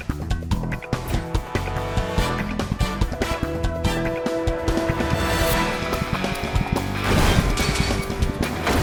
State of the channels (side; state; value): both; identical; correlation 1.00